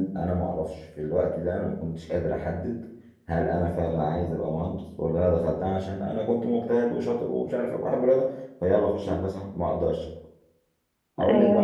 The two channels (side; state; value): both; identical; correlation 1.00